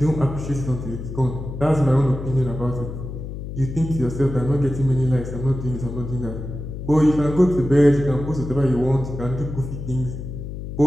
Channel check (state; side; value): noise; left; hum, 8 dB below the sound